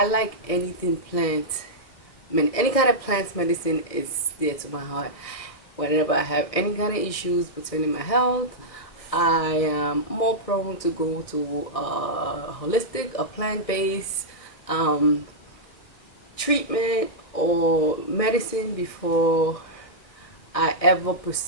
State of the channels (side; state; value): right; late; 1.6 ms